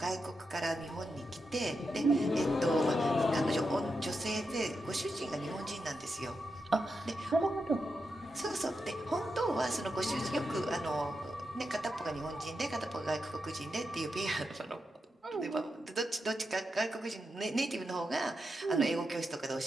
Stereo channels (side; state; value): both; normal; correlation 0.87